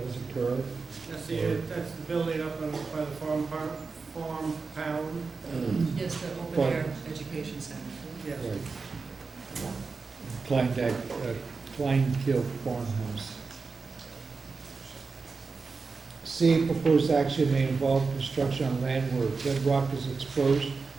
occur. That's the building up by the farm pound. Yes, the open But- air education center. Yes. Right. Kleinkill Farmhouse. C, proposed action may involve construction on land where bedrock is exposed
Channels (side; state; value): left; quieter; 4.5 dB